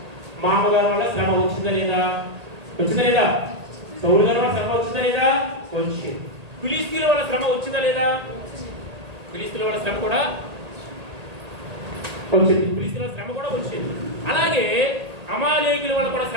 మామగారి వల్ల శ్రమ వచ్చిందా లేదా? సౌలు గారి వల్ల శ్రమ వచ్చిందా లేదా? వచ్చింది. ఫిలిస్తీన్ల వల్ల శ్రమ వచ్చిందా లేదా? ఫిలిస్తీన్ల వల్ల శ్రమ కూడా వచ్చింది. అలాగే అమాలేకీయుల వల్ల కూడా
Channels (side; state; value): left; late; 1.8 ms